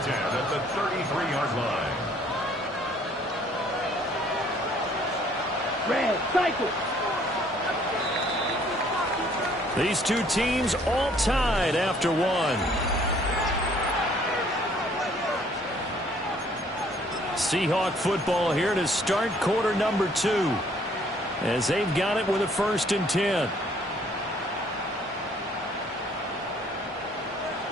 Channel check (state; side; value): normal; both; correlation 0.61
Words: 10 at the 33-yard line. Red, cycle. These two teams all tied after one. Seahawk football here to start quarter number 2, as they've got it with a 1st and 10.